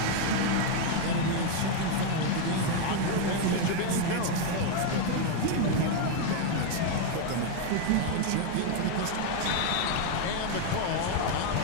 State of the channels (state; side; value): different; both; correlation 0.01